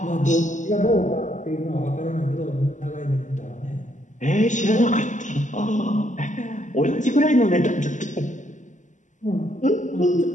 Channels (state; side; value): late; right; 0.36 ms